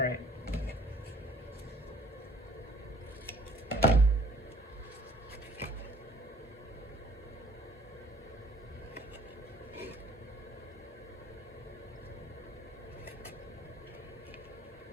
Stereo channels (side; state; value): both; normal; correlation 0.57